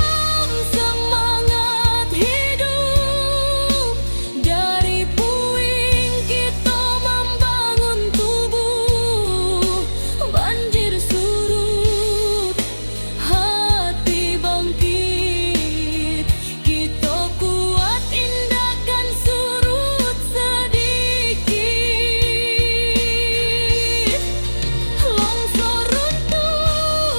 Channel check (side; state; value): both; inverted; correlation -1.00